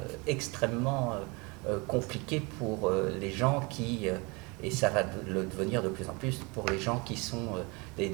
extrêmement compliqué pour les gens qui, et ça va le devenir de plus en plus pour les gens qui sont des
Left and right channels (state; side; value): quieter; left; 28.2 dB